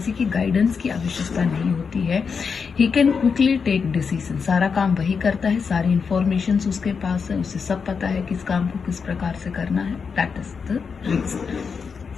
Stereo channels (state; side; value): quieter; right; 5.7 dB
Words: की गाइडेंस की आवश्यकता नहीं होती है। He can quickly take decision, सारा काम वही करता है, सारी इंफॉर्मेशन उसके पास है, उसे सब पता है किस काम को किस प्रकार से करना है। That is the reason.